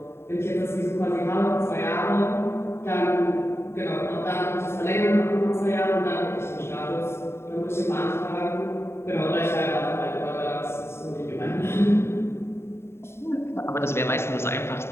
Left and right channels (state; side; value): late; right; 0.12 ms